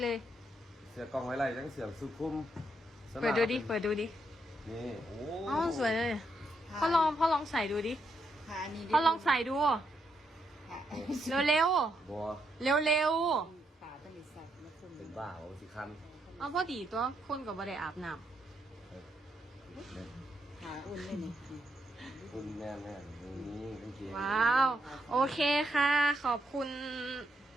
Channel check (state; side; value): normal; both; correlation 0.79